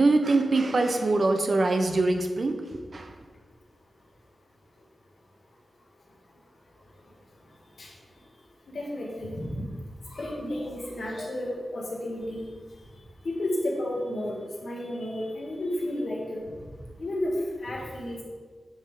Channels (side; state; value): both; normal; correlation 0.93